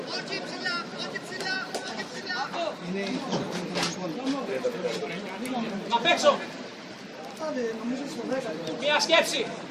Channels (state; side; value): identical; both; correlation 1.00